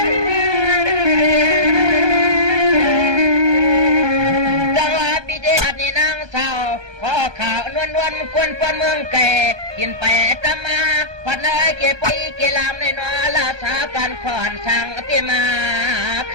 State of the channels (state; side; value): late; left; 1.2 ms